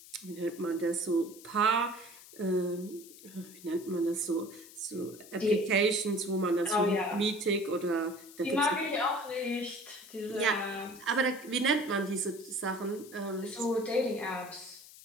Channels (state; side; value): noise; left; hiss, 19 dB below the sound